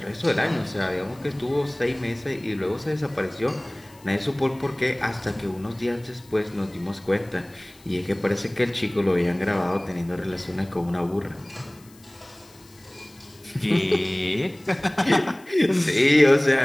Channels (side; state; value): left; noise; hiss, 26 dB below the sound